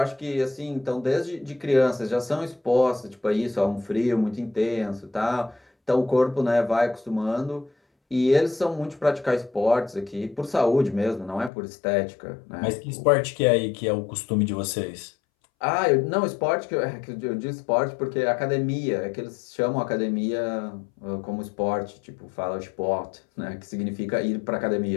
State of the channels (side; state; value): right; drops out; at 11.5 s